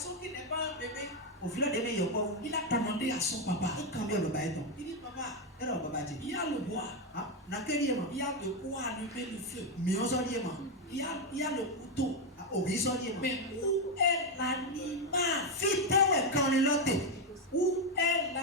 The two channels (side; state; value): both; normal; correlation 0.06